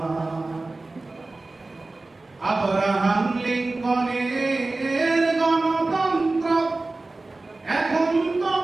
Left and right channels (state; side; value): quieter; left; 3.2 dB